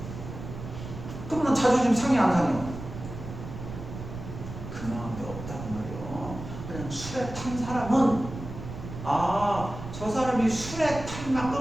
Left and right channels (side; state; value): right; noise; rumble, 10 dB below the sound